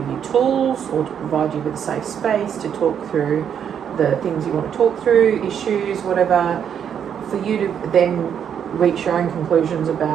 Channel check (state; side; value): quieter; left; 8.4 dB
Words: you tools or to provide you with a safe space to talk through the things you want to talk through, issues, whatever, for you to then reach your own conclusions